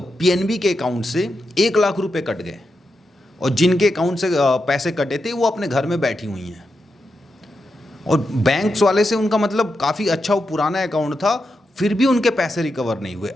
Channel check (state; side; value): normal; both; correlation 0.87